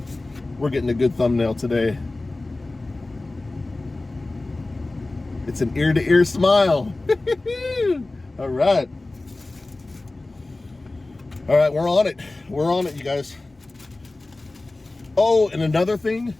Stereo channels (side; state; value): right; quieter; 3.0 dB